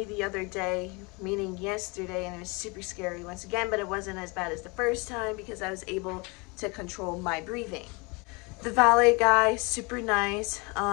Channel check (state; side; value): quieter; right; 28.5 dB